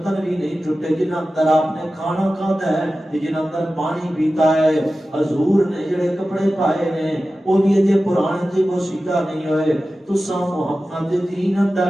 بھی نہیں ٹوٹے جن اندر آپ نے کھانا کھاتا ہے جن اندر پانی پیتا ہے حضور نے جڑے کپڑے پائے نے وہ بھی اجے پرانے تے وہ سیدھا نہیں ہوئے تو سا محمد دین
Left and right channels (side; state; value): both; normal; correlation 0.95